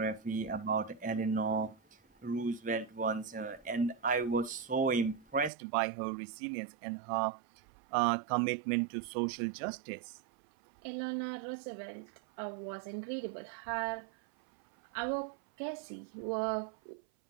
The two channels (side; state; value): left; drops out; at 5.5 s